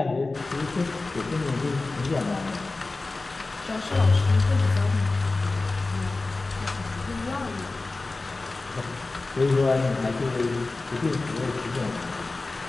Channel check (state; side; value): quieter; right; 3.4 dB